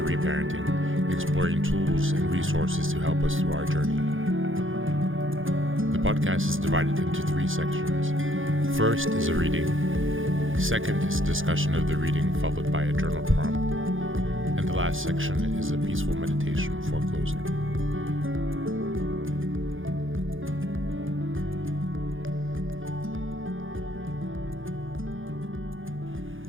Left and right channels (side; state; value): left; late; 0.58 ms